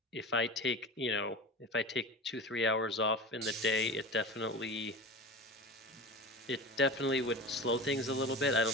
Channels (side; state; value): both; normal; correlation 0.30